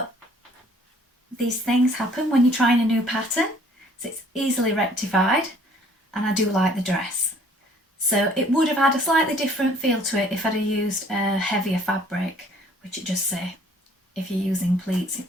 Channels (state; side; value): normal; both; correlation 0.57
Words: these things happen when you're trying a new pattern, so it's easily rectified, and I do like the dress. So it would have had a slightly different feel to it if I'd have used a heavier fabric, which it just say if you're using pleats